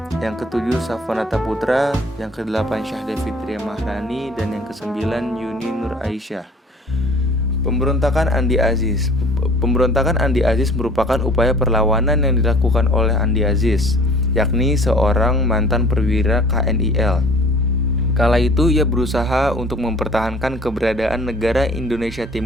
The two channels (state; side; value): normal; both; correlation 0.49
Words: yang ketujuh Safanata Putra, yang kedelapan Syahda Fitria Mahrani, dan yang kesembilan Yuni Nur Aisyah. Pemberontakan Andi Aziz. Pemberontakan Andi Aziz merupakan upaya perlawanan yang dilakukan oleh Andi Aziz, yakni seorang mantan perwira KNIL. Kala itu ia berusaha untuk mempertahankan keberadaan negara Indonesia